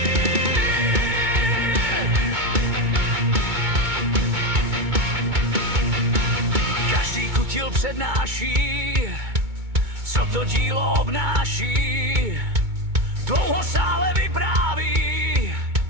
Každý kutil přednáší, co to dílo obnáší. Dlouho sále vypráví,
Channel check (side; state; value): left; late; 2.2 ms